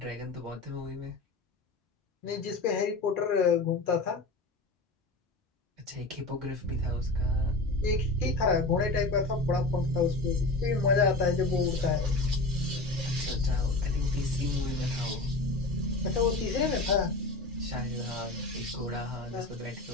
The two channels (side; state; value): right; quieter; 3.1 dB